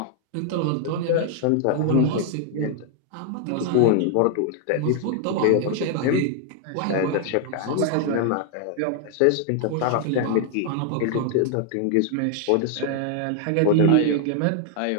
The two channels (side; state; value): both; different; correlation 0.00